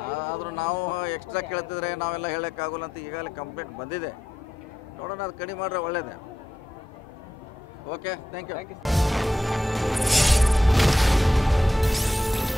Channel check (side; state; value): both; normal; correlation 0.86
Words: ಆದರೂ ನಾವು ಎಕ್ಸ್ಟ್ರಾ ಕೇಳ್ತಿದ್ರೆ ನಾವೆಲ್ಲ ಹೇಳೋಕ್ಕಾಗಲ್ಲ ಅಂತ ಈಗಾಗಲೇ ಕಂಪ್ಲೇಂಟ್ ಬಂದಿದೆ. ನೋಡೋಣ, ಅದು ಕಡಿಮೆ ಮಾಡಿದ್ರೆ ಒಳ್ಳೇದೇ. Okay, thank you.